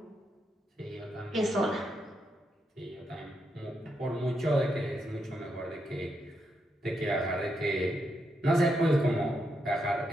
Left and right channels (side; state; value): both; normal; correlation 0.82